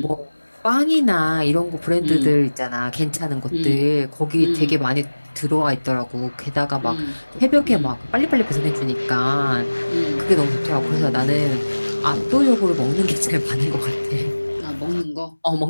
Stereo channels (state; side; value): inverted; both; correlation -1.00